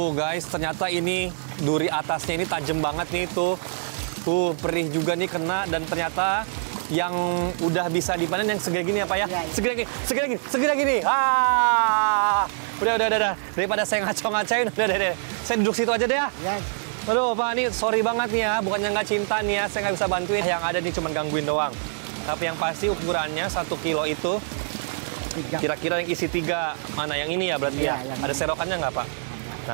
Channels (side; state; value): left; silent; digital silence